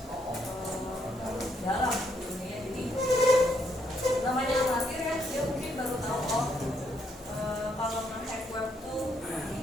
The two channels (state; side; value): normal; both; correlation 0.74